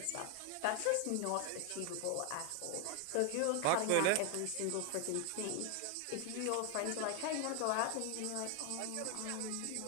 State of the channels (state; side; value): different; both; correlation 0.01